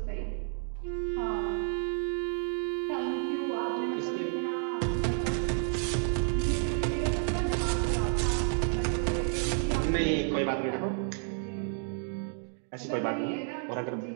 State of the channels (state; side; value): silent; left; 57 dB below the other